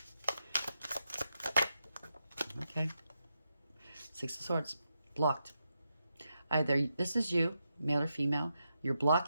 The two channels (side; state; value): both; inverted; correlation -0.85